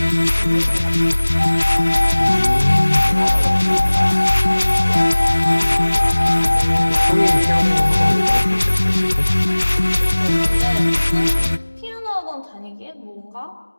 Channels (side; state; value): both; inverted; correlation -1.00